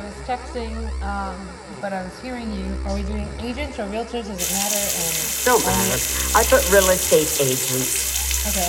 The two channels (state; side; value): identical; both; correlation 1.00